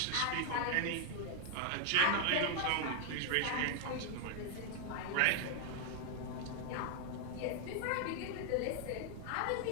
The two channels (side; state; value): both; different; correlation 0.00